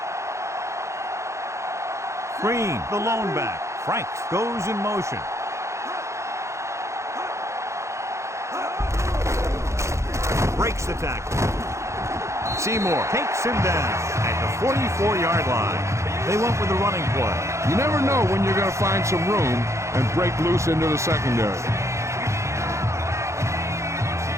Green, the lone back. Franks goes in motion. Breaks the tackle. Seymour takes him down at the 44-yard line. They went with the running play. You never know when you're going to find some room and break loose into the secondary.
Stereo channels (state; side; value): late; left; 0.14 ms